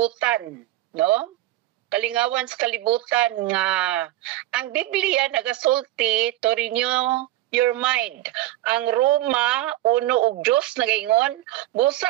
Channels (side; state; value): left; quieter; 15.3 dB